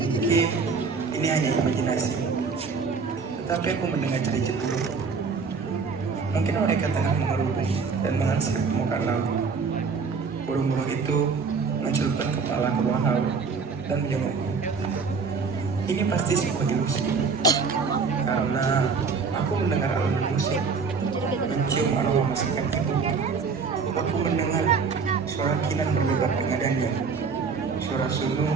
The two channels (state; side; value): quieter; left; 5.1 dB